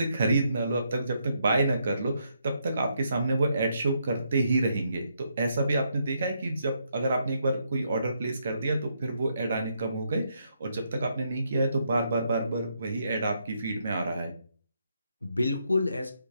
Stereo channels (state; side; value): inverted; both; correlation -0.77